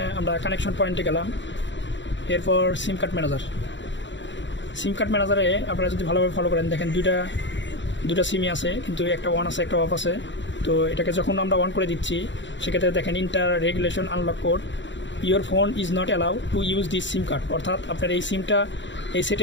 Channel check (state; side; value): late; right; 0.54 ms